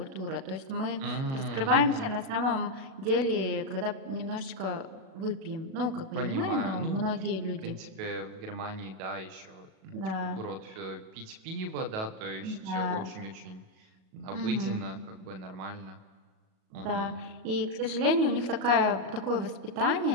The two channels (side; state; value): left; late; 37 ms